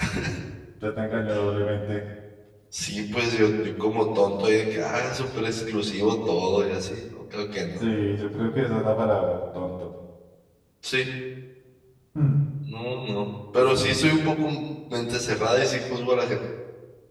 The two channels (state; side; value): identical; both; correlation 1.00